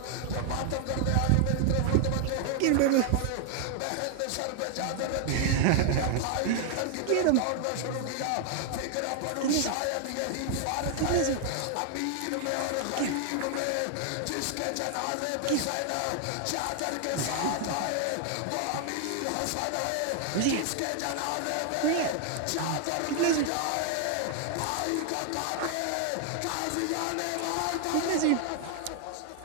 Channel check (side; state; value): both; different; correlation 0.00